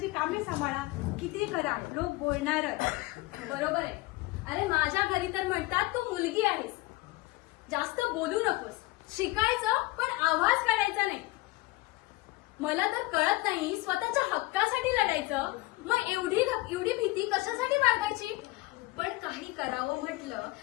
कामे सांभाळा, किती करा, लोक बोलणारच. बरोबर आहे. अरे माझ्या घरी तर म्हणतात तू मुलगी आहेस, जास्त बोलू नकोस, शिकायचं पण आवाज काढायचा नाही. मला तर कळत नाही स्वतःच्या हक्कासाठी लढायचं, मग एवढी भीती कशासाठी बाळगायची? पण काही करावं म्हटलं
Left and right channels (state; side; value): quieter; right; 20.7 dB